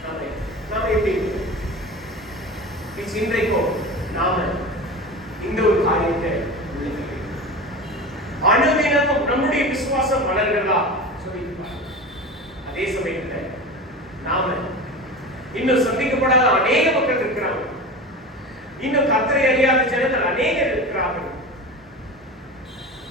நாம எப்படி இன்றைக்கும் நாம இந்த ஒரு காரியத்தை அனுதினமும் நம்முடைய விசுவாசம் வளர்கிறதா சொல்லி அதே சமயத்துல நாம இன்னும் சந்திக்கப்படாத அநேக மக்கள் இருக்கிறாங்க, இன்னும் கர்த்தரை அறியாத ஜனங்கள் அநேகர் இருக்கிறார்கள்.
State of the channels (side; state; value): both; normal; correlation 0.30